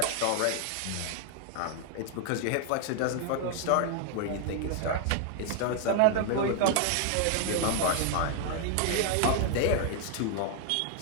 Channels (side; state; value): both; different; correlation 0.00